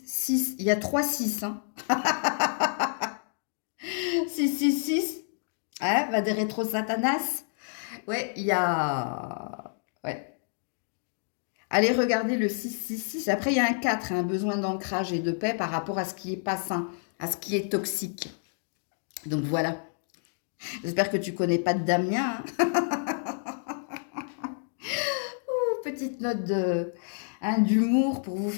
6. Il y a 3 6. Hein. 6, 6, 6. Hein, va des rétro Satanas. Ouais, il y a... Ouais. Allez regarder le 6, 6, 6. Après, il y a un 4, hein, besoin d'ancrage et de paix par rapport à ce qui est pas sain, à ce qui est toxique. Donc, voilà. J'espère que tu connais pas de Damien. Hein. Petite note d'humour pour vous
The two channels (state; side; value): silent; right; digital silence